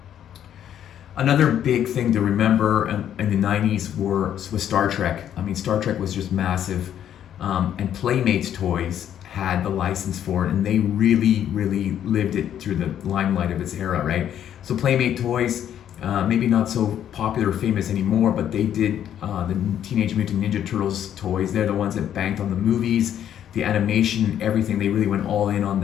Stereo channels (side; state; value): right; quieter; 10.2 dB